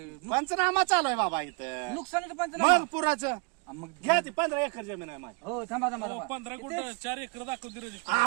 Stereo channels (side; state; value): left; quieter; 32.2 dB